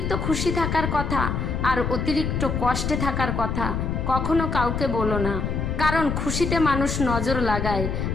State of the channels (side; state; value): left; noise; rumble, 1 dB below the sound